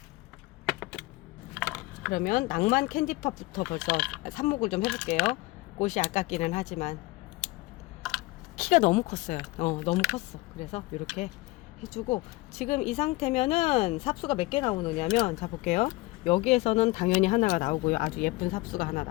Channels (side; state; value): right; quieter; 21.6 dB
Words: 그러면 낭만 캔디팝부터 벌써 삽목을 좀 해볼게요. 꽃이 아깝기는 하지만 키가 너무 컸어요. 너무 컸어. 그래서 이렇게 해주고, 지금 이 상태면은 삽수가 몇 개 나오느냐면, 자 볼게요. 여기에서는 당연히 하나가 나오고요. 아주 예쁜 삽수가 하나